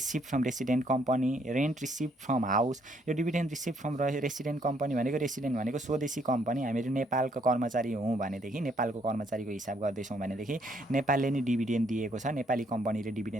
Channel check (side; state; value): both; normal; correlation 0.69